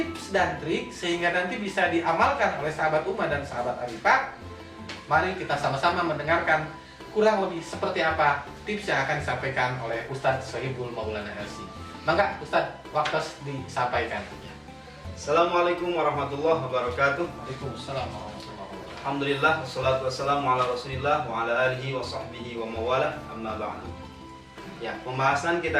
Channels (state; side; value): identical; both; correlation 1.00